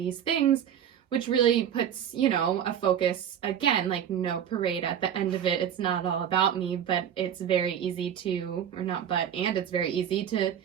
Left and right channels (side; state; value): left; quieter; 9.2 dB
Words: things, which really puts, you know, a focus, again, like no parade at the end of it. It's not all about me, but it's very easy to, or not but, and it's very easy to